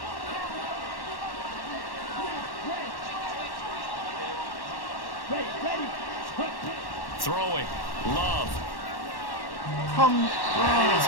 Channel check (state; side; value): late; right; 1.1 ms